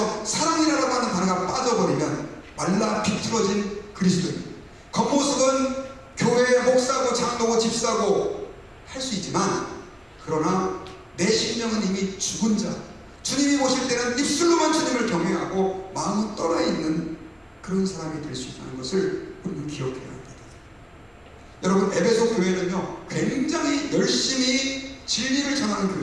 사랑이라고 하는 단어가 빠져버리면 말라 비틀어진 그리스도인, 겉모습은 교회의 목사고 장로고 집사고 할 수 있지만, 그러나 내 심령은 이미 죽은 자, 주님이 보실 때는 입술로만 주님을 경외하고 마음은 떠나있는 그런 사람이 될 수 있다는 것을 우리는 기억해야 합니다. 여러분, 에베소 교회는요, 굉장히 열심히 진리를 전하는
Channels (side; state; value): both; identical; correlation 1.00